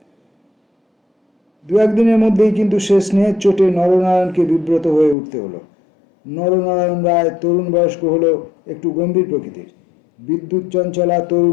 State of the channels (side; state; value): right; drops out; at 5.2 s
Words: দু একদিনের মধ্যেই কিন্তু সে স্নেহের চোটে নরনারায়ণকে বিব্রত হয়ে উঠতে হলো। নরনারায়ণ রায় তরুণ বয়স্ক হলেও একটু গম্ভীর প্রকৃতির। বিদ্যুৎ চঞ্চলা